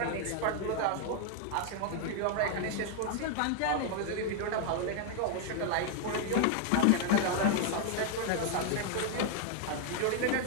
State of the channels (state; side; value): different; both; correlation 0.00